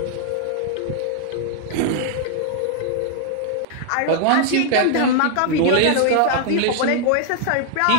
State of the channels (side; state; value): both; different; correlation 0.00